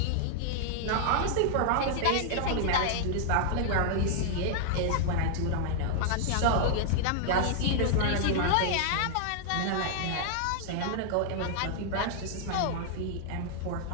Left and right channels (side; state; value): both; different; correlation -0.01